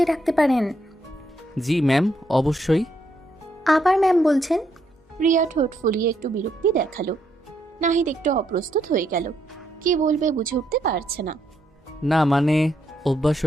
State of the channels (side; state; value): both; normal; correlation 0.76